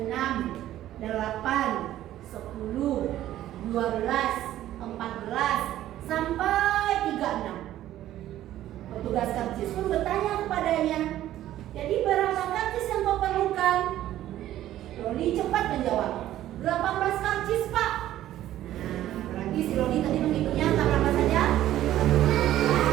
8, 10, 12, 14, sampai 36. Petugas karcis pun bertanya kepadanya, jadi berapa karcis yang kau perlukan? Loli cepat menjawab, 18 karcis Pak. Nah, berarti si Loli tadi menghitungnya angka berapa saja?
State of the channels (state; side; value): quieter; left; 13.2 dB